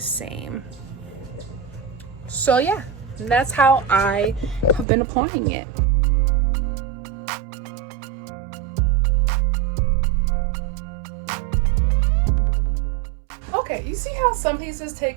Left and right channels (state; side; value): drops out; left; at 4.9 s